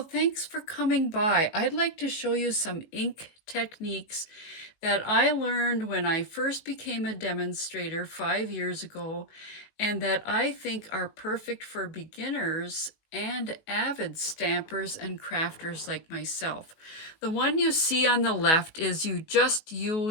thanks for coming by. I'd like to show you some ink techniques that I learned when I first became a demonstrator 5 years ago, and that I think are perfect for beginners and avid stampers and crafters like myself. The one you see on the left is you just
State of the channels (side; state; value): right; late; 19 ms